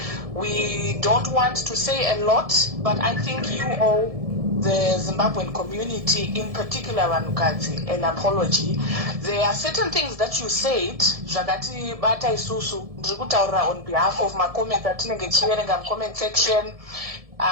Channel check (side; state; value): left; late; 1.7 ms